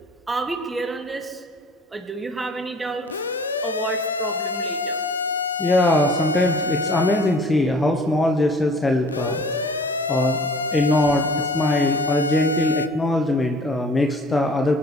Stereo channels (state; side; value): normal; both; correlation 0.49